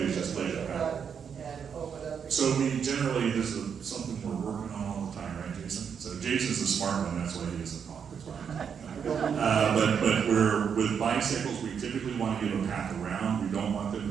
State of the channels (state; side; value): quieter; left; 7.2 dB